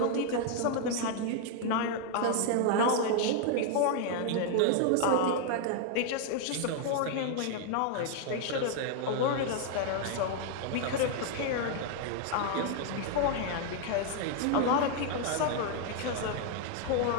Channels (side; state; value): both; different; correlation 0.00